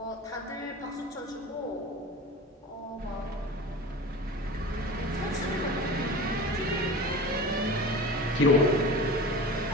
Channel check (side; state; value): both; normal; correlation 0.34